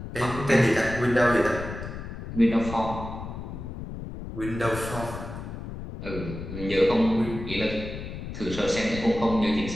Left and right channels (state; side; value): noise; left; rumble, 9 dB below the sound